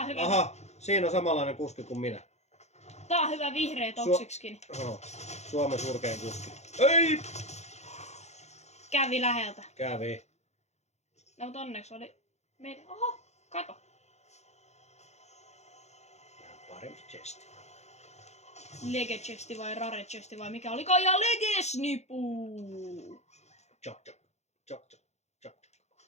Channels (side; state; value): right; late; 0.32 ms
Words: hyvä. Aha, siinä on samanlainen kuski kuin minä. Tää on hyvä vihreä toksikskin. Suomen surkein kuski. Ei! Kävi läheltä. Kävi. No mutta onneksi oli meidän... Oho, kato. Parempi chesti. Lege chesti vai rare chesti vai mikä olikaan? Ja lege snipu! Chok chok. Chok chok. Chok chok.